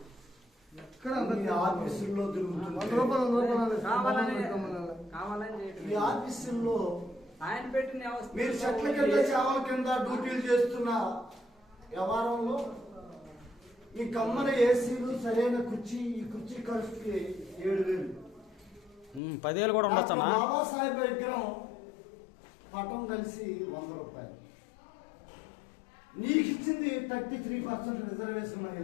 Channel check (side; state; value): right; drops out; at 19.2 s